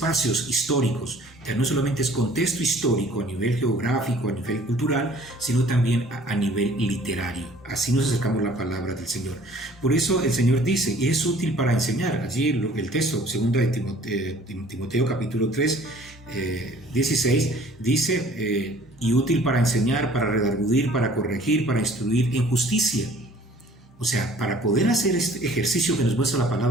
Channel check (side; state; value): both; normal; correlation 0.53